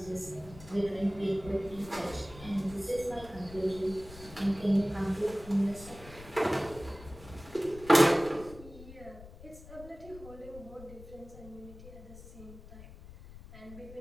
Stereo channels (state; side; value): noise; left; rumble, 17 dB below the sound